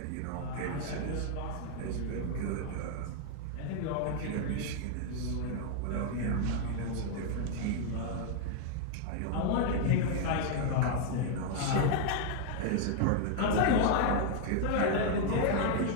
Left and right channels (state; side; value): different; both; correlation 0.00